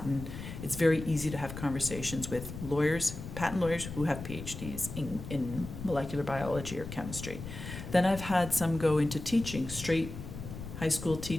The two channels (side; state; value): left; noise; rumble, 10 dB below the sound